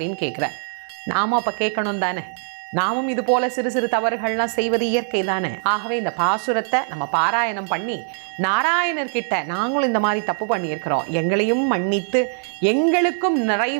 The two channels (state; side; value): silent; left; 64 dB below the other